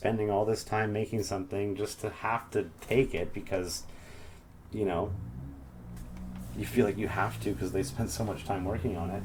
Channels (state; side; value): identical; both; correlation 1.00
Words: all this time making something just to have to take it because, you know, you feel like you have to because they spent so much time working on it.